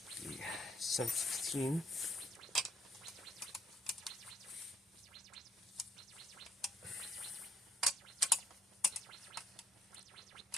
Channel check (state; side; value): normal; both; correlation 0.72